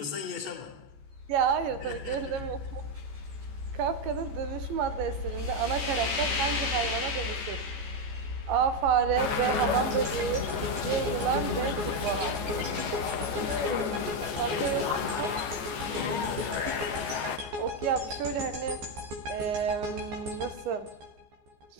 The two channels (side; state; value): left; late; 14 ms